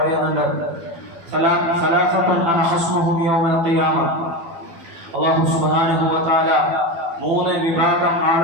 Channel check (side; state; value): left; late; 12 ms